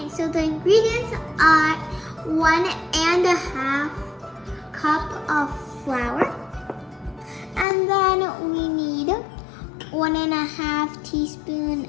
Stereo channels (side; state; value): right; drops out; at 7.7 s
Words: so the ingredients are 1.5 cup of flour. And then we need 1.5 teaspoon